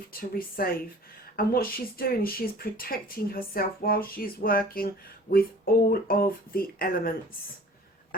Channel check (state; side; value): normal; both; correlation 0.47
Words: to receive. And what she's doing is she's protecting herself while she's working with all of the elements.